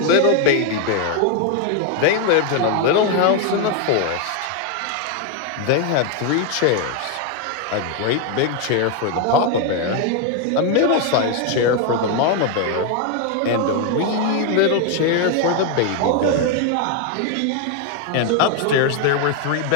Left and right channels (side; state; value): both; different; correlation 0.01